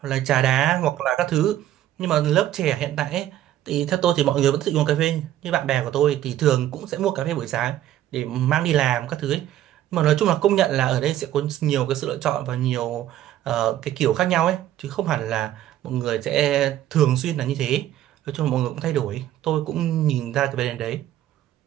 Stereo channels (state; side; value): quieter; left; 12.7 dB